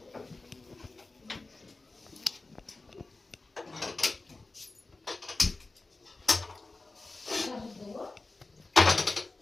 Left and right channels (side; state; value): right; quieter; 3.4 dB